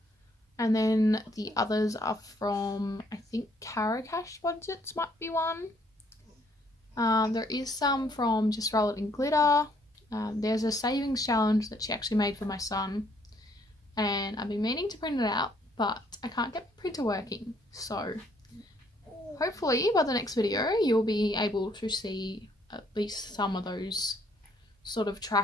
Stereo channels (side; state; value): both; normal; correlation 0.66